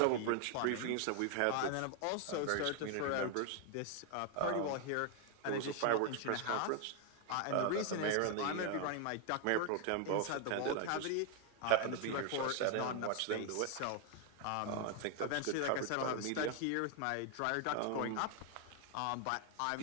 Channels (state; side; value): different; both; correlation 0.00